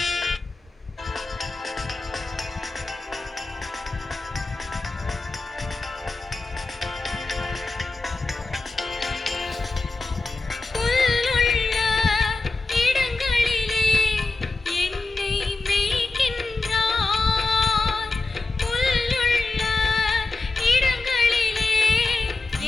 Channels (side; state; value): right; quieter; 3.5 dB